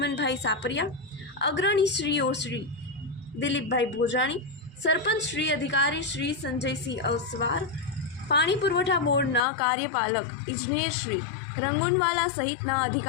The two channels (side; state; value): right; drops out; at 9.4 s